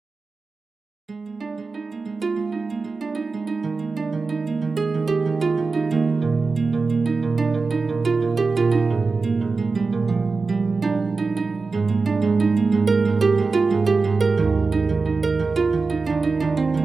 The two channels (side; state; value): left; quieter; 4.1 dB